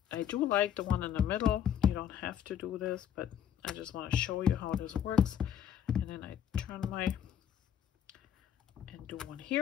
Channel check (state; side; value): quieter; right; 9.5 dB